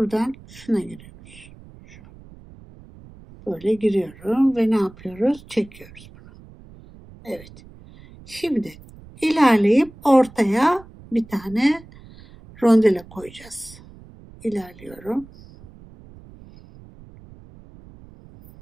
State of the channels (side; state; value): right; noise; rumble, 21 dB below the sound